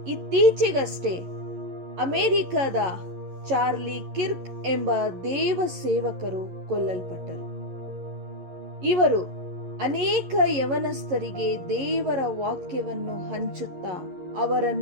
ಇತ್ತೀಚೆಗಷ್ಟೇ ಅಮೆರಿಕದ ಚಾರ್ಲಿ ಕಿರ್ಕ್ ಎಂಬ ದೇವ ಸೇವಕರು ಕೊಲ್ಲಲ್ಪಟ್ಟರು. ಇವರು ಅನೇಕ ಯವನಸ್ಥರಿಗೆ ದೇವರ ವಾಕ್ಯವನ್ನು ಹಂಚುತ್ತಾ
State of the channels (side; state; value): left; late; 11 ms